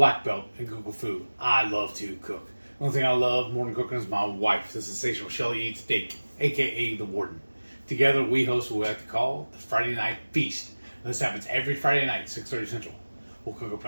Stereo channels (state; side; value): inverted; both; correlation -1.00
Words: belt in Google Food. I love to cook. The only thing I love more than cooking is my wife, the sensational Shelly Eats Steak, aka the Warden. Together we host what we like to call the Friday Night Feast. And this happens every Friday night, 6:30 Central. We'll cook up